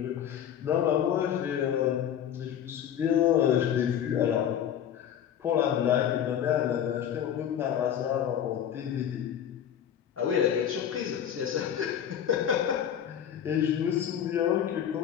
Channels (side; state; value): right; quieter; 9.5 dB